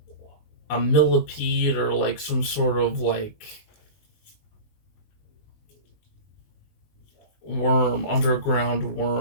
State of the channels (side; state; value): right; late; 19 ms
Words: millipede or like some sort of like worm, underground